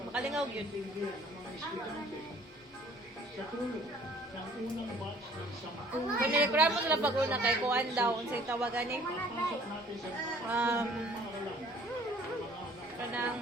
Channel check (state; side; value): normal; both; correlation 0.55